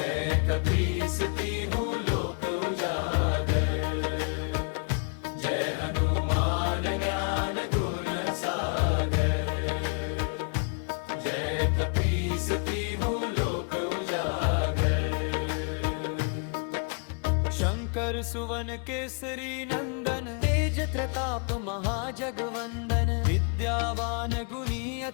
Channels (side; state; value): right; quieter; 38.6 dB